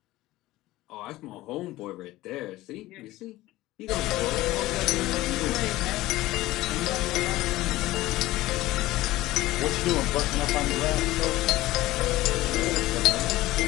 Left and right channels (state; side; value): quieter; right; 17.4 dB